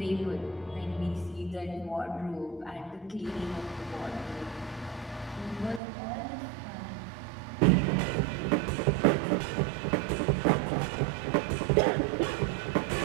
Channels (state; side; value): drops out; left; at 5.8 s